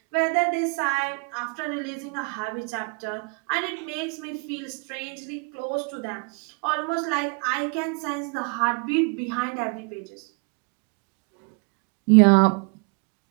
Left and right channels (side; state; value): left; quieter; 34.8 dB